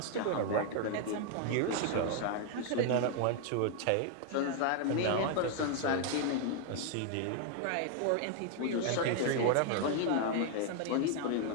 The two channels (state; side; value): different; both; correlation 0.00